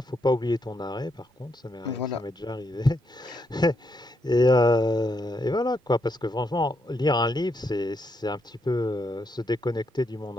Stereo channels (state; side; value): normal; both; correlation 0.79